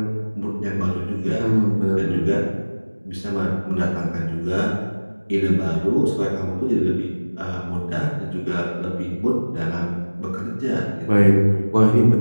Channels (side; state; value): both; inverted; correlation -1.00